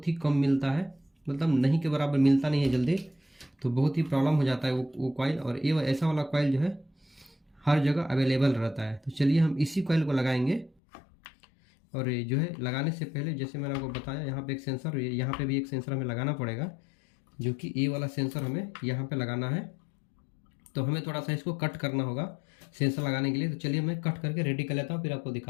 ही कम मिलता है, मतलब नहीं के बराबर मिलता नहीं है जल्दी, तो बहुत ही प्रॉब्लम हो जाता है वो कॉइल। और ये ऐसा वाला कॉइल जो है हर जगह अवेलेबल रहता है। तो चलिए हम इसी कॉइल को लगाएंगे। और ये जो है लगाने से पहले जैसे मैंने आपको बताया, यहाँ पे एक सेंसर, यहाँ पे भी एक सेंसर हमें लगाना पड़ेगा, जो कि ये वाला सेंसर हमें यहाँ पे लगाना है। तो हमें थोड़ा सा इसको कट करना होगा सेंसर लगाने के लिए। तो चलिए मैं कट करके रेडी कर लेता हूँ, फिर आपको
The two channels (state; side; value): drops out; right; at 10.8 s